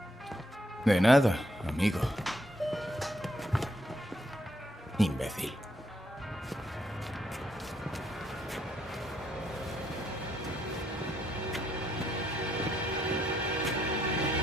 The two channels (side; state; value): both; normal; correlation 0.74